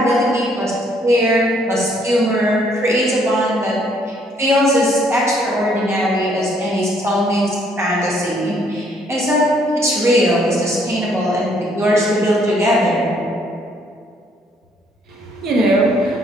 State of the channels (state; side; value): normal; both; correlation 0.66